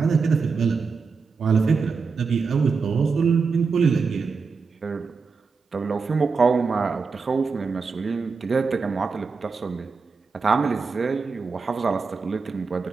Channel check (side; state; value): left; quieter; 4.9 dB